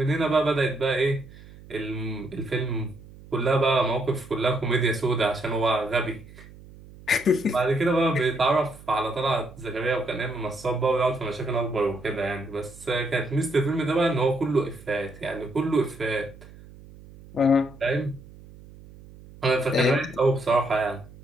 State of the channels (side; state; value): right; noise; hum, 20 dB below the sound